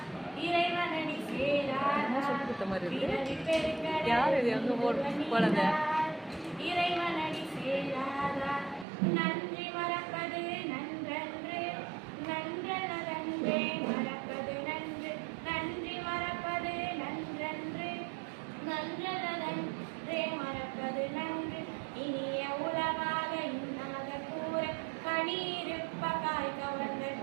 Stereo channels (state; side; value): drops out; left; at 8.8 s